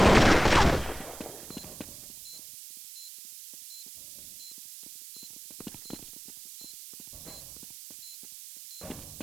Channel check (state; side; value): noise; right; hiss, 15 dB below the sound